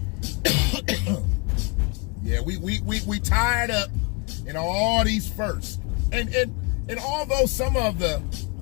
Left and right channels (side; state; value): right; quieter; 30.5 dB